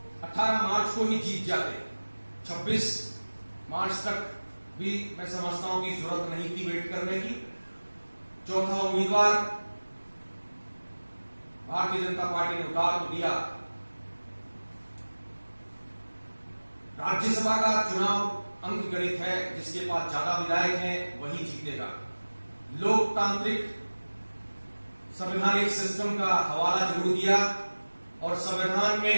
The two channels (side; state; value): both; inverted; correlation -1.00